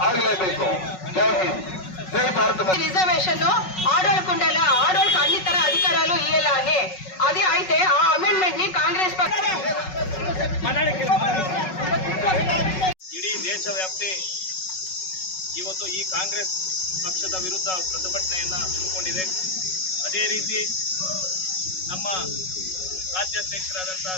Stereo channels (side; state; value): right; late; 5.4 ms